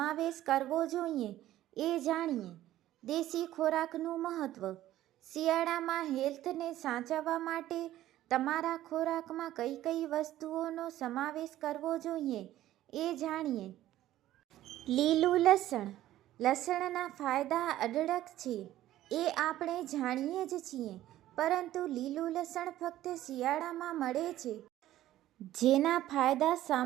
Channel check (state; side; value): quieter; left; 13.9 dB